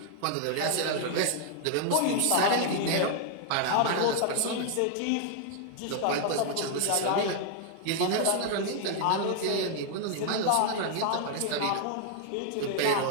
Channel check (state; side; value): different; both; correlation 0.00